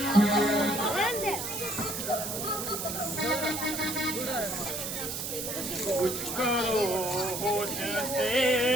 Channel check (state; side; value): noise; right; hiss, 4 dB below the sound